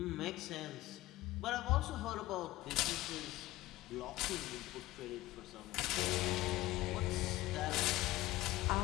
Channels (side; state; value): right; quieter; 17.6 dB